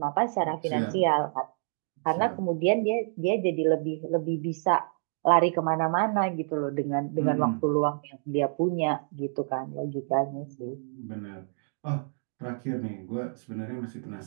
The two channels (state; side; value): silent; left; 59 dB below the other